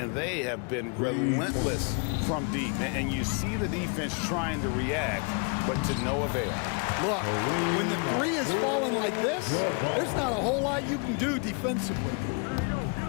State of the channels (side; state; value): right; quieter; 35.7 dB